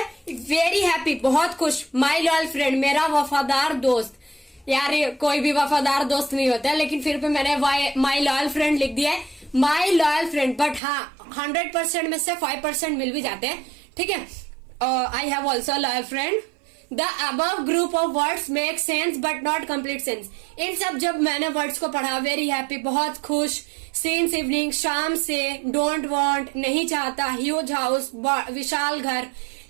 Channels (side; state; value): left; drops out; at 10.8 s